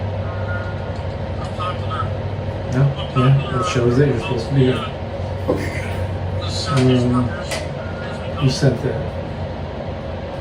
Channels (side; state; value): both; identical; correlation 1.00